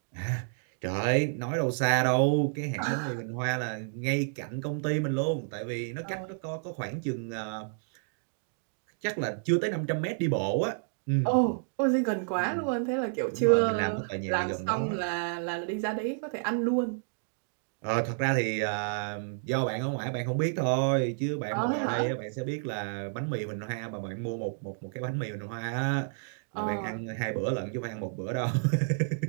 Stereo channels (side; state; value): left; silent; digital silence